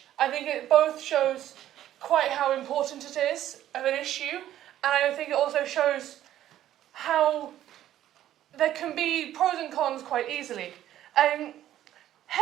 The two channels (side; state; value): left; quieter; 12.4 dB